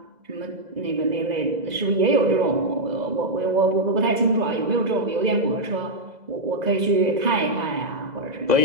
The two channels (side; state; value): left; late; 2.0 ms